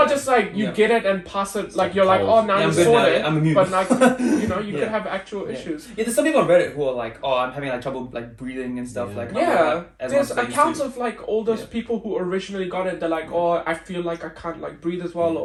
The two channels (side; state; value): both; identical; correlation 1.00